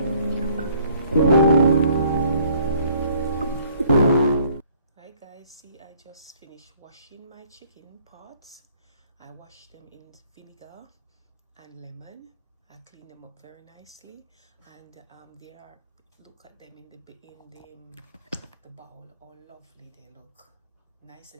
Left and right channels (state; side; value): inverted; both; correlation -0.59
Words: guys, see, I just finished washing my chicken parts. I washed them in vinegar and lemon. I cleaned them up very nicely, and they are, look at them in the bowl, all lovely they look, nice